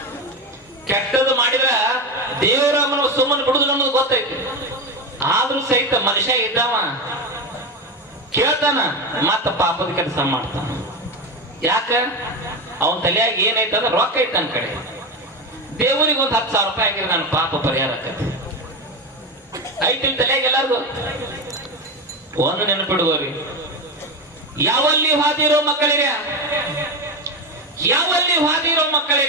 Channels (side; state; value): both; normal; correlation 0.17